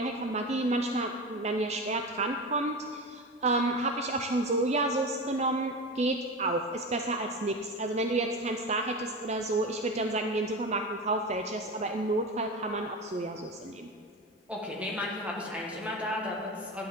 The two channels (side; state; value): both; normal; correlation 0.25